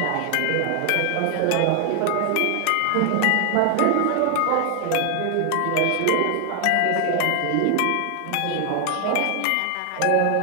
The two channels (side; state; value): both; different; correlation 0.00